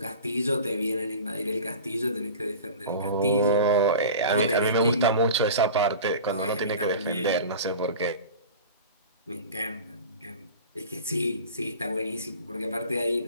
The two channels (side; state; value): both; inverted; correlation -0.36